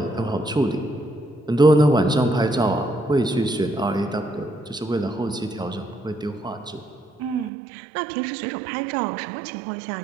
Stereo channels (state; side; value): drops out; left; at 7.5 s